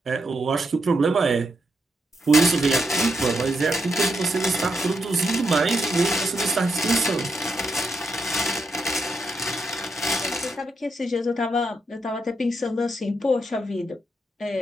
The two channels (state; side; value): normal; both; correlation 0.82